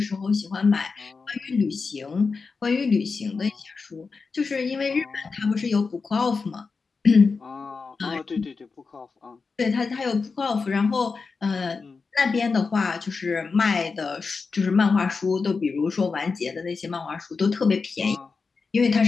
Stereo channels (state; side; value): quieter; right; 4.6 dB